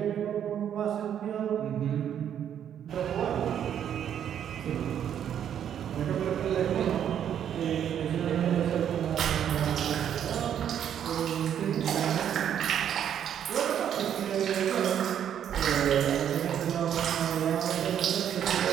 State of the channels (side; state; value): left; quieter; 9.5 dB